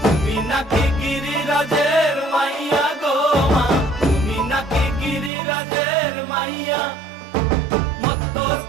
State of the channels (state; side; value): drops out; left; at 5.3 s